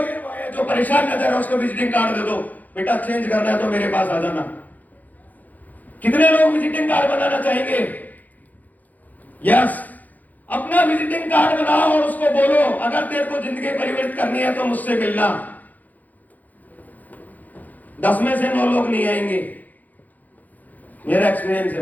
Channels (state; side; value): late; right; 0.081 ms